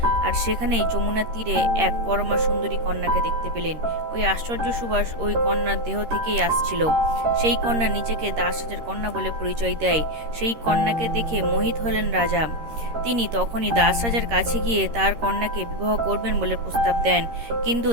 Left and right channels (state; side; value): late; left; 13 ms